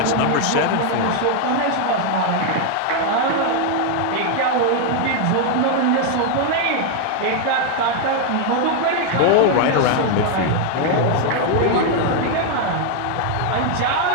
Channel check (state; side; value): different; both; correlation 0.00